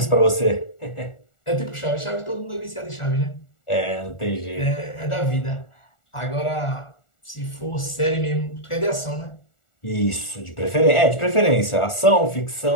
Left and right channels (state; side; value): late; right; 1.4 ms